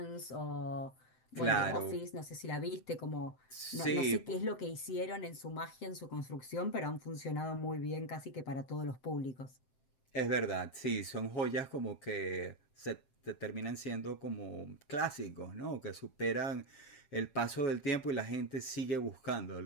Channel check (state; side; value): late; right; 7.2 ms